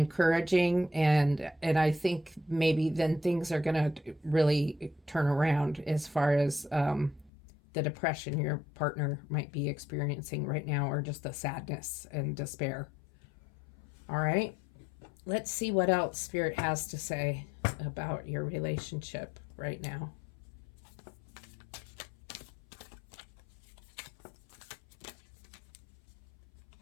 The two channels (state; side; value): drops out; right; at 7.3 s